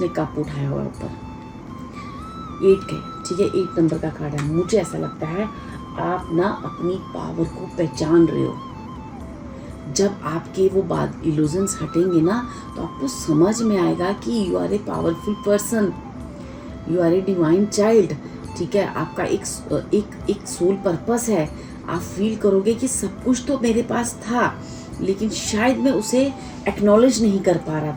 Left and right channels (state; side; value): identical; both; correlation 1.00